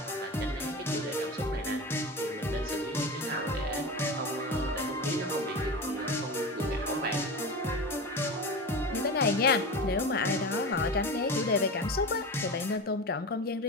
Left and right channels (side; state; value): both; normal; correlation 0.27